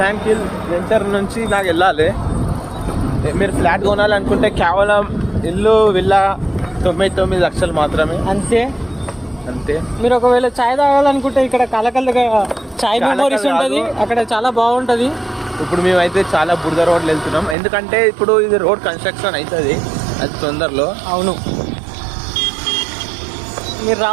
వెంచర్ నుంచి నాకు వెళ్ళాలి. మీరు ఫ్లాట్ కొనాలనుకుంటే కేవలం ఇల్లు విల్లా 99 లక్షలు మాత్రమే. అంతే. మీరు ఒకవేళ చాయ్ తాగాలనుకుంటే ఇక్కడ కలకల్లుగా చాయ్ మెమోరీస్ ఉంటుంది, అక్కడ చాలా బాగుంటుంది. ఇప్పుడు మేమైతే చాలా బురద రోడ్లు వెళ్తున్నాం, ఎందుకంటే ఇప్పుడు ఇది రోడ్ కన్స్ట్రక్షన్ అవుతుంది అది తొందరలో. అవును, మీరు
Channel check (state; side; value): drops out; left; at 17.6 s